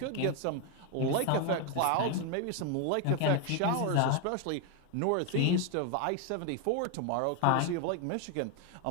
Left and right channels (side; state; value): both; different; correlation 0.01